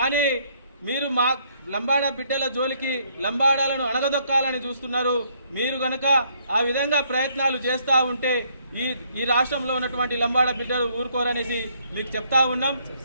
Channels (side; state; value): both; inverted; correlation -0.68